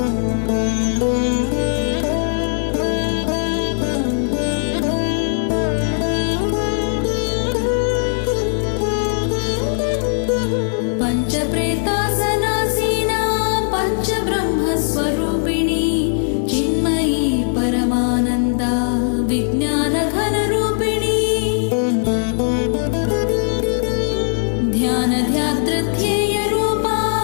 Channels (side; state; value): right; silent; digital silence